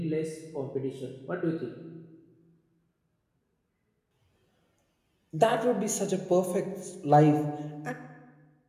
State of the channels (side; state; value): both; identical; correlation 1.00